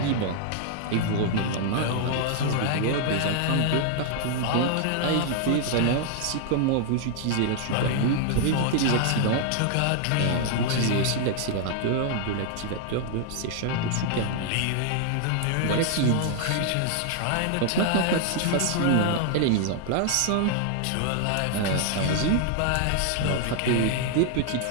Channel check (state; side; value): different; both; correlation 0.00